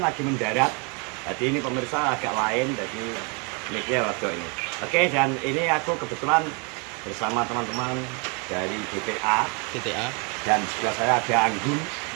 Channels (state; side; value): quieter; left; 33.7 dB